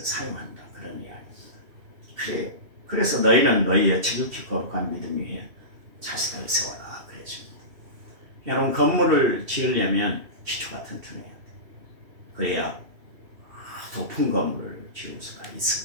사용한다. 그런 이야기입니다. 그래서 너희는 너희의 지극히 거룩한 믿음 위에 자신을 세워라. 그랬습니다. 여러분 건물을 지으려면 기초가 튼튼해야 돼요. 그래야 높은 건물을 지을 수가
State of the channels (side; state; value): left; late; 2.7 ms